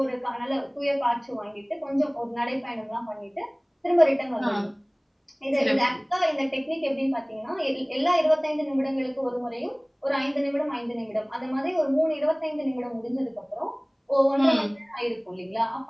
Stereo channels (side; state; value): both; identical; correlation 1.00